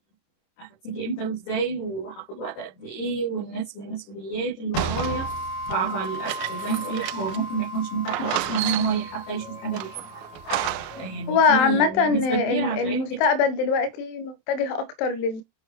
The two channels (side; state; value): right; late; 26 ms